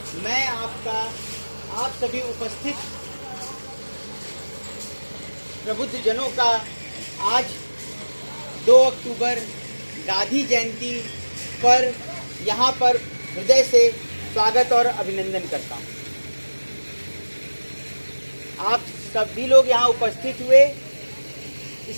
मैं आप सभी उपस्थित प्रबुद्ध जनों का आज 2 अक्टूबर गांधी जयंती पर यहाँ पर हृदय से स्वागत और अभिनंदन करता हूँ। आप सभी लोग यहाँ उपस्थित हुए,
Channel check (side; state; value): both; inverted; correlation -1.00